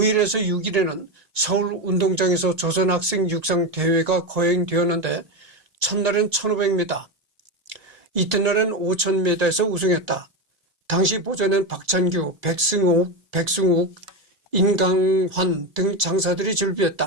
6일에는 서울 운동장에서 조선학생 육상 대회가 거행되었는데 첫날은 1500m, 이튿날은 5000m에서 우승했다. 당시 보전엔 박찬규, 백승욱, 인강환 등 장사들이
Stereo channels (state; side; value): late; left; 1.9 ms